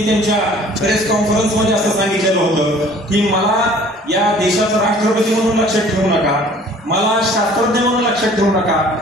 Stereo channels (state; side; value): normal; both; correlation 0.52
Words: त्यांच्या प्रेस कॉन्फरन्समध्ये असं सांगितलेलं होतं की मला या देशाचा राष्ट्रपती म्हणून लक्षात ठेवू नका, मला शास्त्रज्ञ म्हणून लक्षात ठेवू नका,